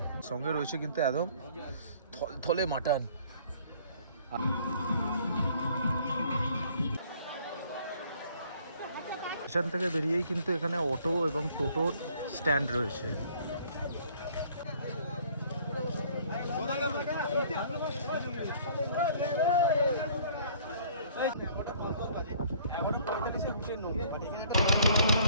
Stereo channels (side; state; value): both; inverted; correlation -0.57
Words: সঙ্গে রয়েছে কিন্তু একদম থলে মাটন। স্টেশন থেকে বেরিয়েই কিন্তু এখানে অটো এবং টোটোর স্ট্যান্ড রয়েছে।